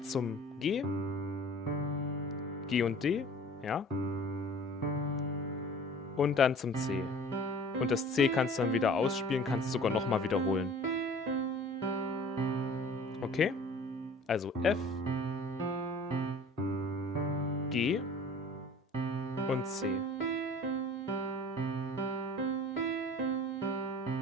zum G. G und D, ja. Und dann zum C. Und das C kannst du dann wieder ausspielen, kannst sogar nochmal wiederholen. Okay? Also F, G und C.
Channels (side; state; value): both; normal; correlation 0.45